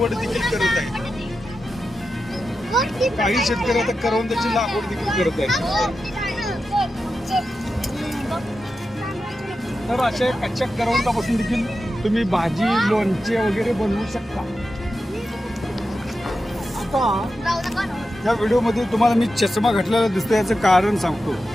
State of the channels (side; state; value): both; normal; correlation 0.90